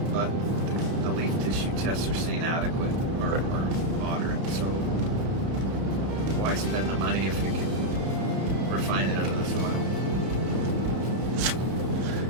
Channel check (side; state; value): left; late; 31 ms